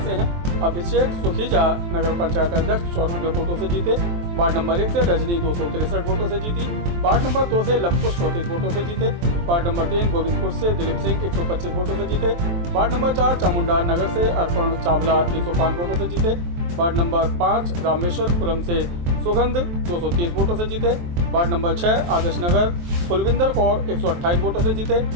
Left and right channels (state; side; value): late; left; 23 ms